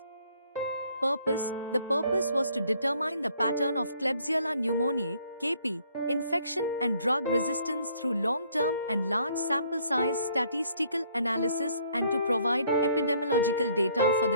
The purpose was to determine the pattern of Klebsiella pneumoniae, KP, infection and drug resistance through long-term and large sample size statistical analysis and to provide epidemiological data for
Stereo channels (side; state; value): both; inverted; correlation -0.64